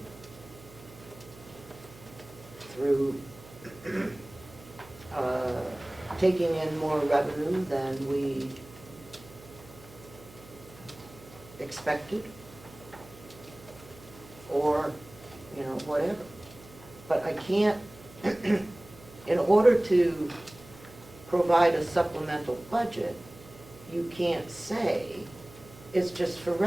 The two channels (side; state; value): right; noise; hum, 20 dB below the sound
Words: through taking in more revenue than we expected, or, whatever. But I can't, in order to provide a supplemental budget, you can't say it's just for